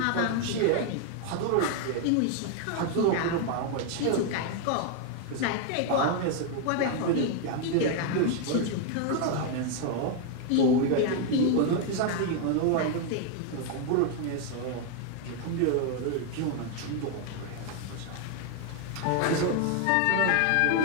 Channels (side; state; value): both; different; correlation 0.01